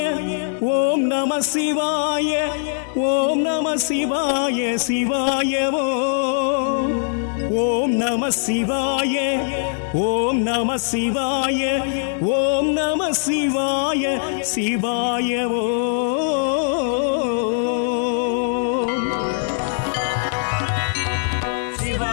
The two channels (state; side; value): silent; right; digital silence